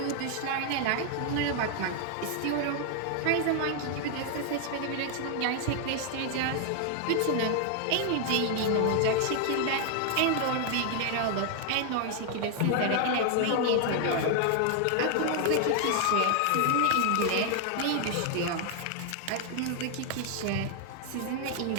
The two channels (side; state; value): both; different; correlation 0.00